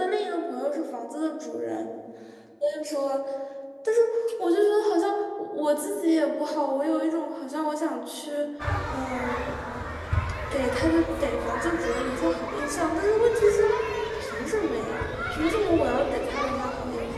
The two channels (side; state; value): both; identical; correlation 1.00